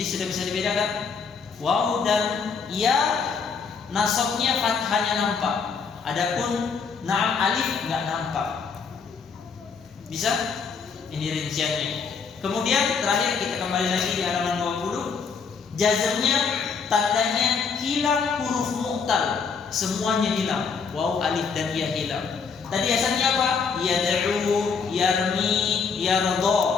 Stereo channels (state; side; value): quieter; right; 5.6 dB